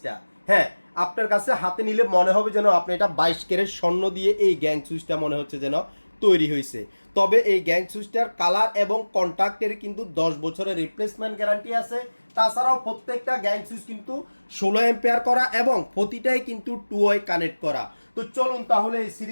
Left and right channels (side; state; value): both; inverted; correlation -1.00